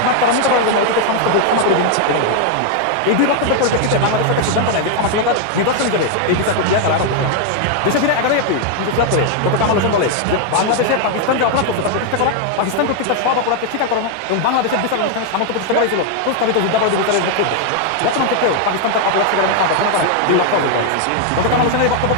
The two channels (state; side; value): different; both; correlation 0.00